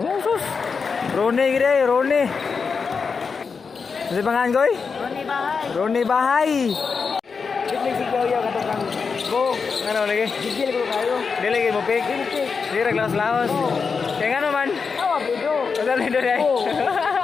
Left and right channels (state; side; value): quieter; right; 5.3 dB